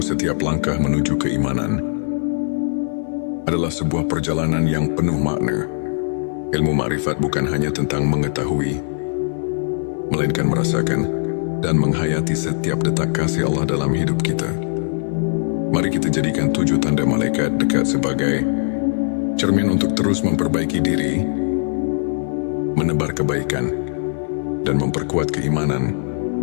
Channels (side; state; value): right; silent; 59 dB below the other